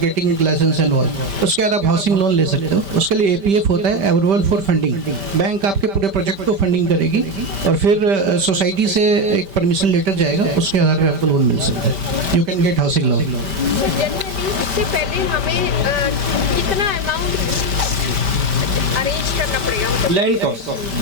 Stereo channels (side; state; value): left; late; 5.1 ms